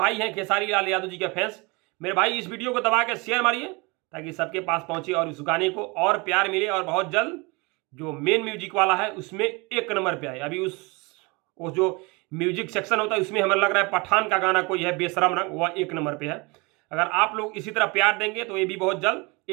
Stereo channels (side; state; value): left; quieter; 27.1 dB